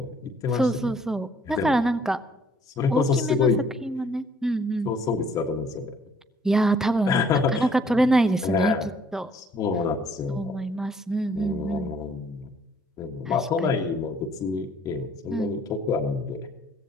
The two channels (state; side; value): normal; both; correlation 0.62